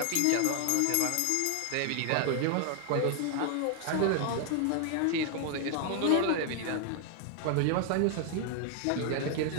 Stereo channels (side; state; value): both; different; correlation 0.00